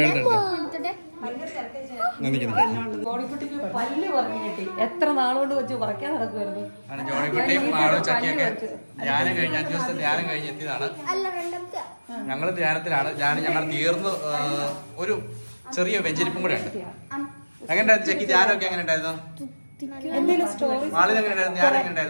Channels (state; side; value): inverted; both; correlation -1.00